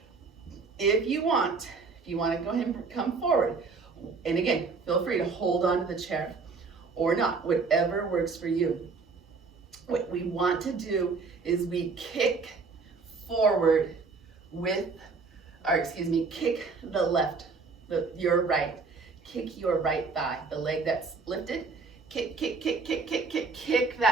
If you want to go ahead and come forward, and again, feel free to hold on to the chair or not, whatever works for you. What we want to do is we kick forward kick the left, your right, kick your right thigh, the leg that's lifted, kick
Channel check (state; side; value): quieter; left; 4.5 dB